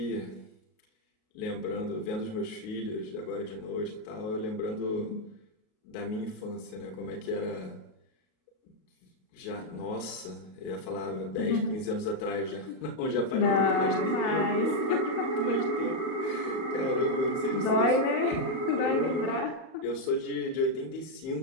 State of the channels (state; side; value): late; right; 38 ms